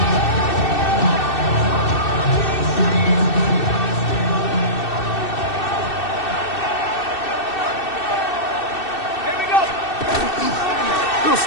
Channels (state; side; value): late; right; 2.6 ms